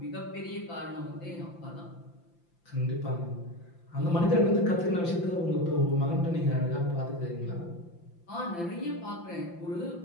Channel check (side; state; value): right; late; 5.8 ms